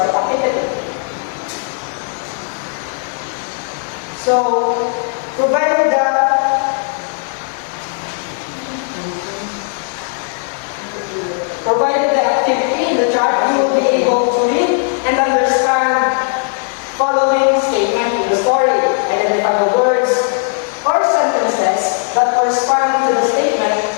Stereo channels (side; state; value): right; silent; 61 dB below the other